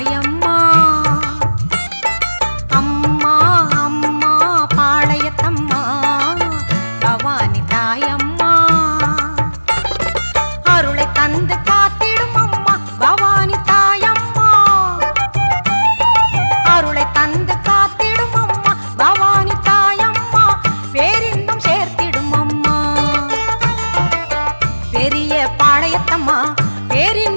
அம்மா அம்மா பாளையத்தம்மா பவானி தாயம்மா அருளை தந்து காத்திடும் அம்மா பவானி தாயம்மா அருளை தந்து காத்திடும் அம்மா பவானி தாயம்மா பேரின்பம் சேர்த்திடும் அம்மா பெரிய பாளையத்தம்மா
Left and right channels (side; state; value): both; inverted; correlation -1.00